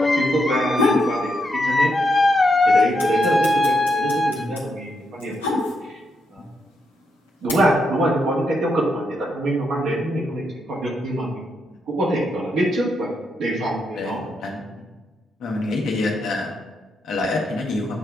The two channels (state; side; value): normal; both; correlation 0.81